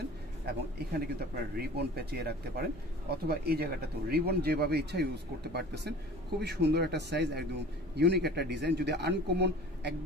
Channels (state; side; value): noise; right; rumble, 19 dB below the sound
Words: এবং এখানে কিন্তু আপনারা রিবন পেঁচিয়ে রাখতে পারেন, অথবা এই জায়গাটাতেও রিবন যেভাবে ইচ্ছা ইউজ করতে পারতেছেন। খুবই সুন্দর একটা সাইজ, একদম ইউনিক একটা ডিজাইন। যদি আনকমন